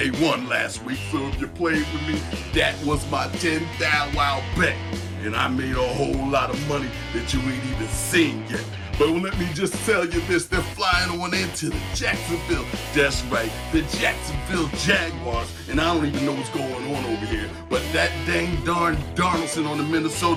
won last week, so if you played with me, that was my 10th thou wow bet. And I made a whole lot of money that you ain't even seen yet. But let me just tell you this, they're flying on into the Jacksonville. That's right, the Jacksonville Jaguars. And I don't even know what's going on over here. But that dang darn Darnoldson on the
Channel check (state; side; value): identical; both; correlation 1.00